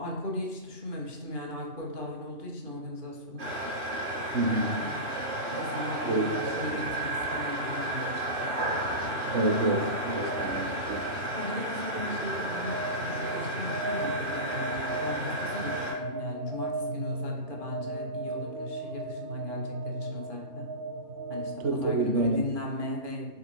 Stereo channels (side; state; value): left; late; 3.0 ms